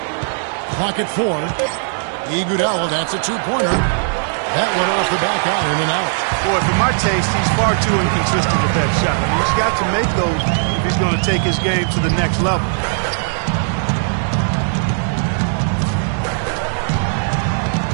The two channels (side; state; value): left; silent; 67 dB below the other